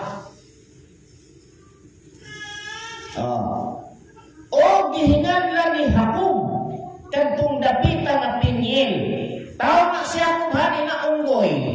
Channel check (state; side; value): identical; both; correlation 1.00